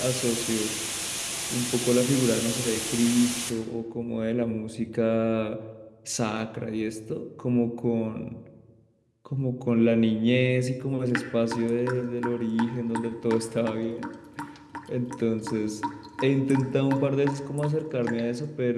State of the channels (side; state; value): both; identical; correlation 1.00